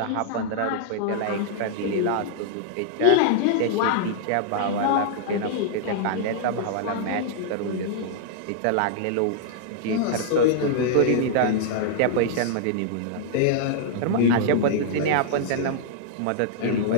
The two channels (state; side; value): different; both; correlation -0.01